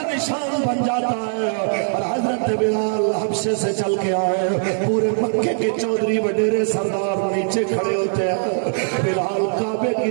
نشان بن جاتا ہے اور حضرت بلال حبشے سے چل کے آئے پورے مکے کے چودھری وڈیرے سردار نیچے کھڑے ہوتے ہیں بلال کعبے کی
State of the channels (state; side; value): silent; left; digital silence